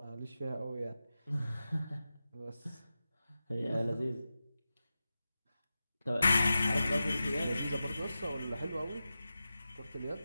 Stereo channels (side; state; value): both; inverted; correlation -0.92